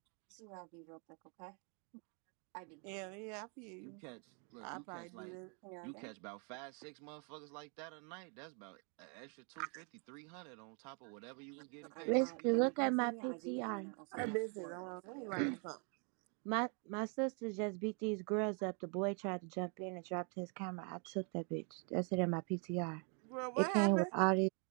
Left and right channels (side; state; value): left; quieter; 37.4 dB